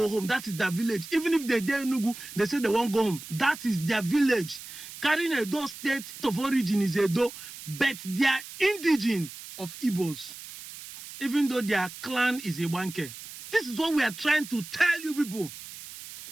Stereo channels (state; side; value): noise; right; hiss, 13 dB below the sound